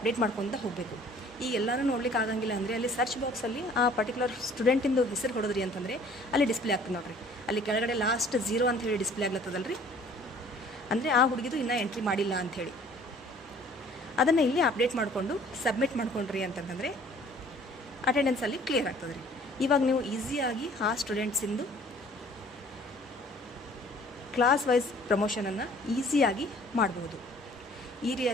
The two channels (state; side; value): normal; both; correlation 0.53